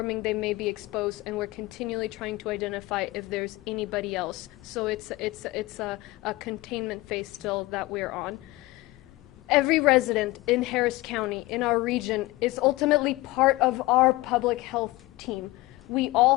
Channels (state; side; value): quieter; right; 20.0 dB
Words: they may be exposed, and we're continually trying to identify if there's anybody else. So it's a containment phase still that we're on. Every resident in Harris County, in our region, is ultimately part of our public health team. We